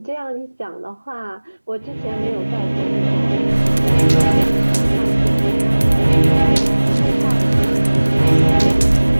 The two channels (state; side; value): inverted; both; correlation -1.00